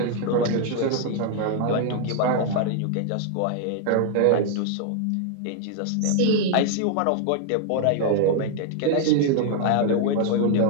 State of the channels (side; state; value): both; different; correlation 0.00